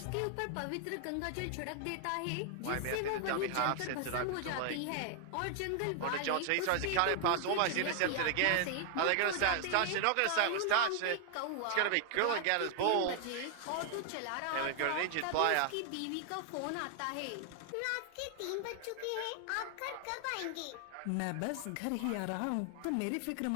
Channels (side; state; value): both; different; correlation 0.00